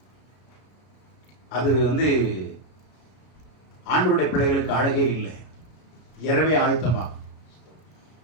அது ஆண்டவருடைய பிள்ளைகளுக்கு அழகே இல்லை. இரவே ஆயத்தமாகும்.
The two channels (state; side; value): late; right; 33 ms